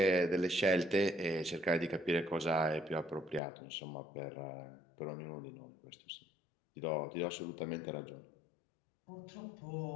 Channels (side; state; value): right; drops out; at 3.4 s